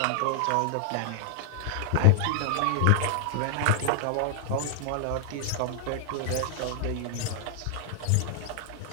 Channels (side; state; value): both; different; correlation 0.00